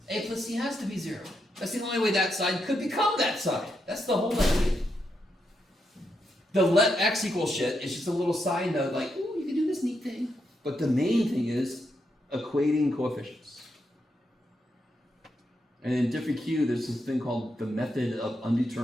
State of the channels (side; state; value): both; normal; correlation 0.82